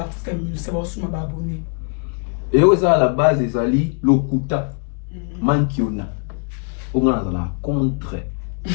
artiste musique, ça va aussi m'abonner. Et oui, ça à la base des ali lokuta mankiona. On a la contre.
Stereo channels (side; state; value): right; quieter; 37.5 dB